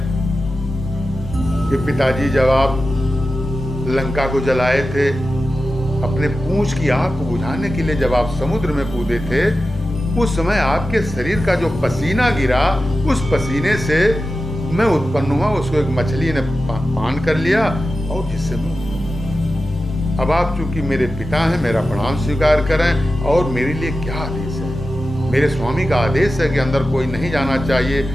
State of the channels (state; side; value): normal; both; correlation 0.92